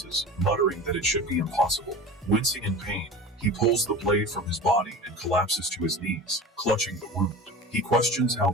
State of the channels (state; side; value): normal; both; correlation 0.33